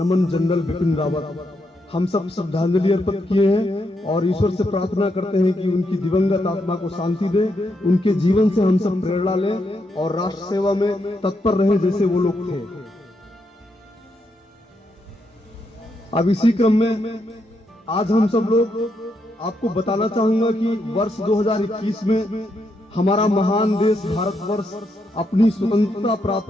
जनरल बिपिन रावत। हम सब श्रद्धांजलि अर्पित किए हैं और ईश्वर से प्रार्थना करते हैं कि उनकी दिवंगत आत्मा को शांति दे। उनके जीवन से हम सब प्रेरणा लें और राष्ट्र सेवा में तत्पर रहें जैसे वो लोग थे। अब इसी क्रम में आज हम सब लोग आपको बताना चाहूंगा कि वर्ष 2021 में हमारा महान देश भारतवर्ष अपनी स्वतंत्रता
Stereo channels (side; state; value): both; normal; correlation 0.80